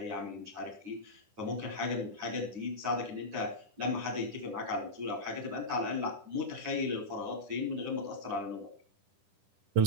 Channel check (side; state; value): left; late; 10 ms